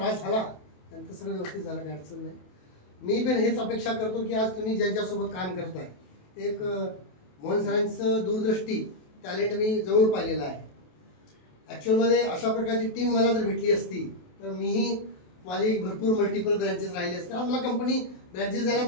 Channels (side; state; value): right; late; 28 ms